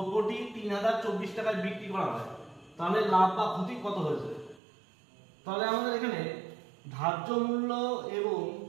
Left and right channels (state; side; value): drops out; left; at 4.6 s